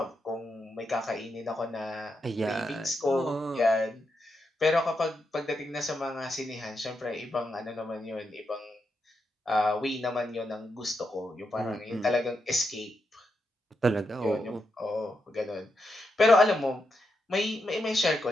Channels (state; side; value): normal; both; correlation 0.84